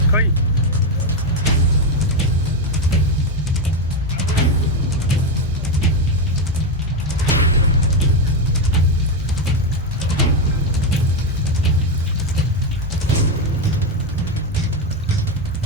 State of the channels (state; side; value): normal; both; correlation 0.08